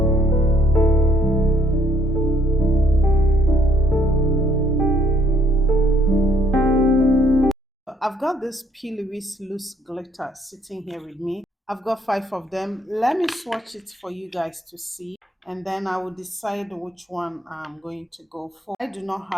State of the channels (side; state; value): both; normal; correlation 0.66